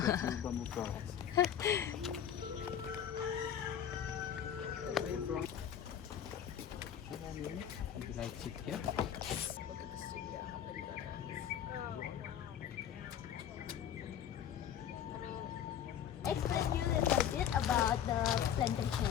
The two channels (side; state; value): right; quieter; 9.3 dB